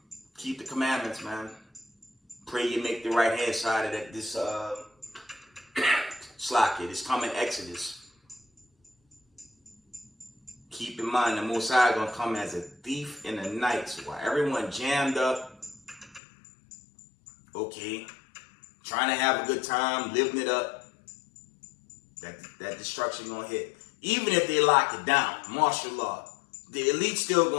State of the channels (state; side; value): drops out; right; at 16.2 s